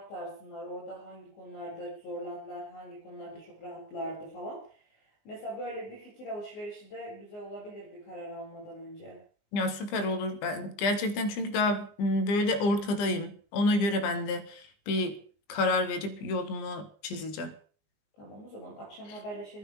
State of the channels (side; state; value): right; late; 20 ms